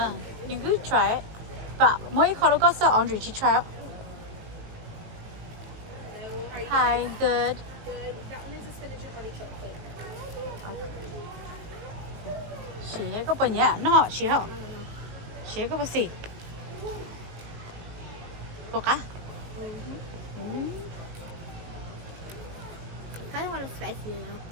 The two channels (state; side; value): late; left; 19 ms